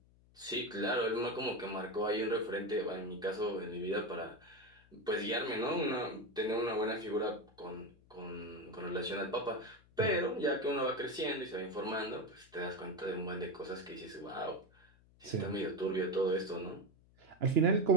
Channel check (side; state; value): left; noise; hum, 28 dB below the sound